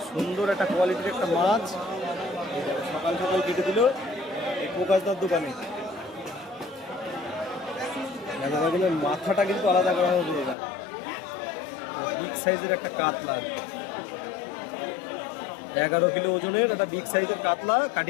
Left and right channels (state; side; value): drops out; right; at 10.6 s